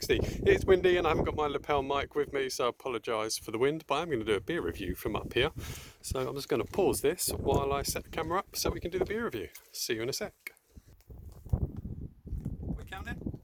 It's windy and I haven't got my lapel mic with me, so I apologise for the wind, but I'm going to do a beer review from up here. So I'm just going to pause this while I set the camera up so we can do the beer review. See you in a sec. We counting?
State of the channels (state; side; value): identical; both; correlation 1.00